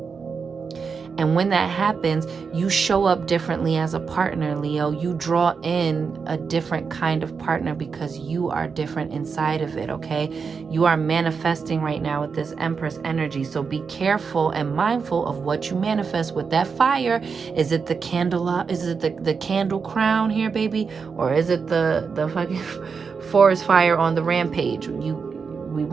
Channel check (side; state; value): left; quieter; 5.5 dB